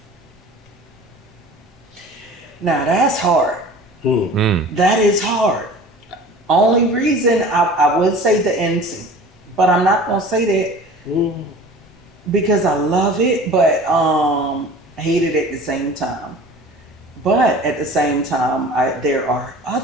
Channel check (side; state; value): both; normal; correlation 0.42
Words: Now, that's hard. That is hard. Only reason I would say the end scene, but I'm not going to say that because I love it, but hate it at the same time. But at the same time, there are